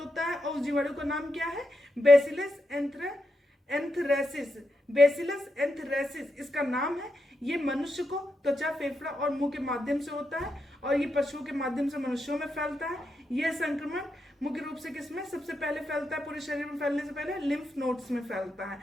है और उस जीवाणु का नाम क्या है, बेसिलस एंथ्रेसिस। बेसिलस एंथ्रेसिस इसका नाम है। ये मनुष्य को त्वचा, फेफड़ा और मुंह के माध्यम से होता है और ये पशुओं के माध्यम से मनुष्यों में फैलता है। यह संक्रमण मुख्य रूप से किसमें सबसे पहले फैलता है, पूरे शरीर में फैलने से पहले लिम्फ नोड्स में फैलता है।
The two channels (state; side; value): normal; both; correlation 0.84